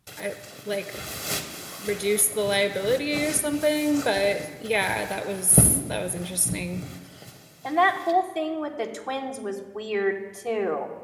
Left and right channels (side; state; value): both; identical; correlation 1.00